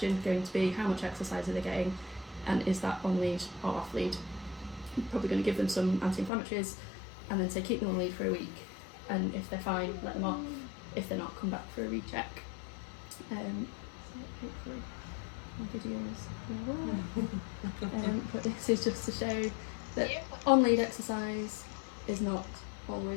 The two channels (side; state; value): right; drops out; at 6.3 s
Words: going to be how much exercise are they getting, and is that on lead or off lead? You're probably going to give them some anti-inflammatories and then say keep them on lead for a week, and if they're fine, let them off. If they're not, come back for a recheck. So hopefully my videos will work. But this is just to show that on-lead exercise is not